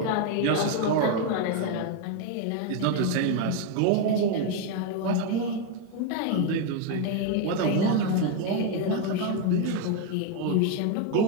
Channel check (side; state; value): both; different; correlation 0.01